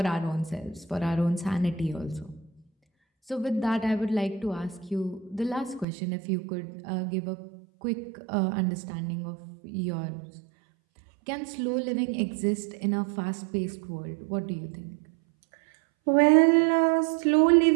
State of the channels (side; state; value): left; drops out; at 5.9 s